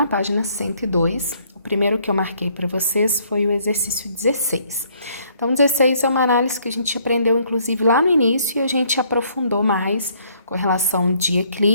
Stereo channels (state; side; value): inverted; both; correlation -0.65